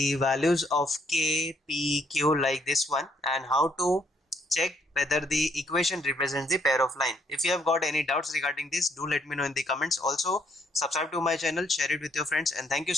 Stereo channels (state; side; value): normal; both; correlation 0.70